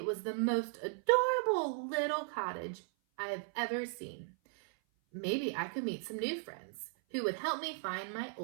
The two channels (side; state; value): left; silent; 53 dB below the other